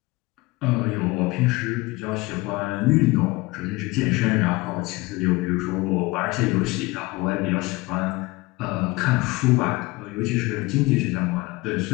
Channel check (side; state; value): right; quieter; 22.6 dB